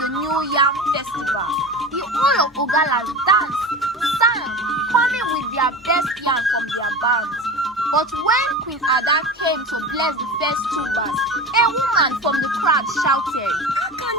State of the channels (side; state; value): both; normal; correlation 0.30